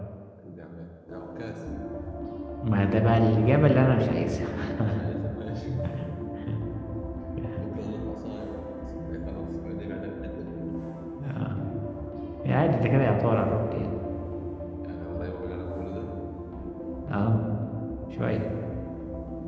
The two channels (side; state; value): both; identical; correlation 1.00